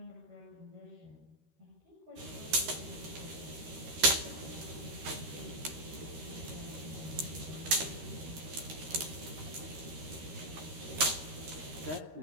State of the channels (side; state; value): left; late; 13 ms